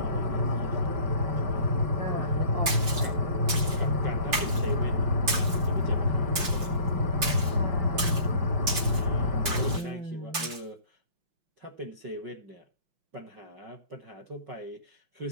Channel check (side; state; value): left; late; 5.8 ms